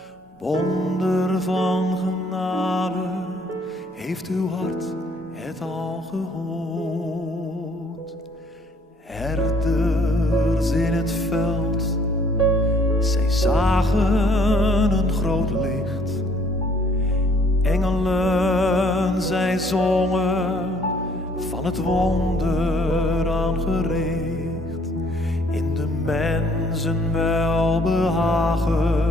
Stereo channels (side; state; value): both; normal; correlation 0.62